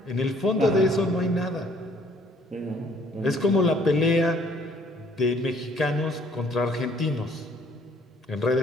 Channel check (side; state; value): both; normal; correlation 0.61